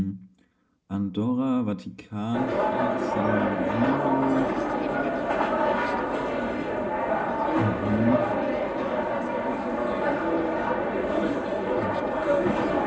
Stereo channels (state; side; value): identical; both; correlation 1.00